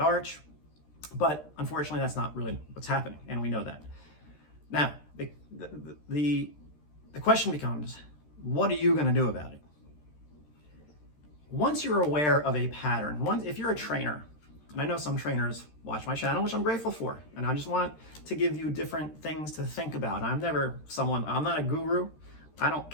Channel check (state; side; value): late; right; 13 ms